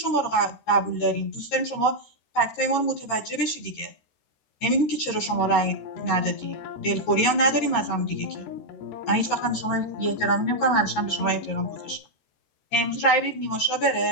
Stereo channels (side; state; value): right; late; 13 ms